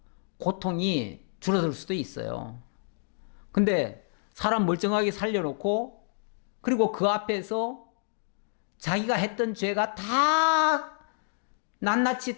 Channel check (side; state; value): right; silent; digital silence